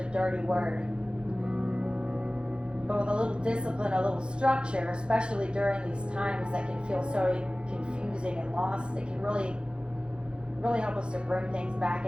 dirty word. But with a little discipline, a little structure, especially during these times that can feel so confusing and lost, it can really help us to bring things back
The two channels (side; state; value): left; late; 0.054 ms